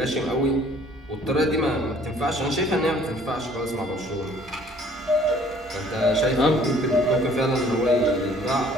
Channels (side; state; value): both; normal; correlation 0.56